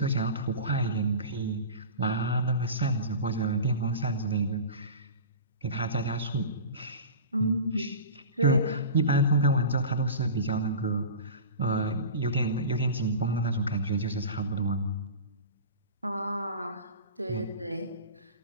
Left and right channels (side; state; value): both; inverted; correlation -0.34